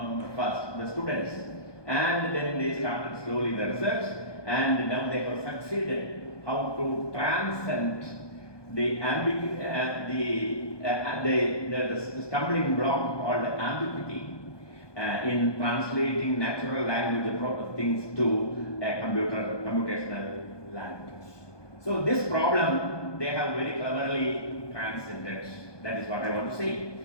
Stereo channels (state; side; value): late; right; 1.2 ms